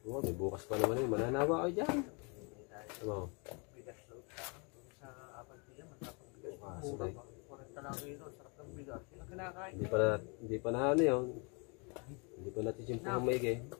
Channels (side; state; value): right; quieter; 33.1 dB